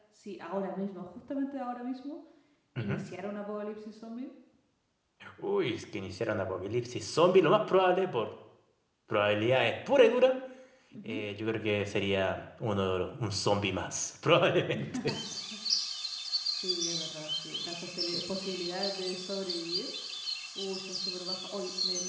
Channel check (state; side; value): identical; both; correlation 1.00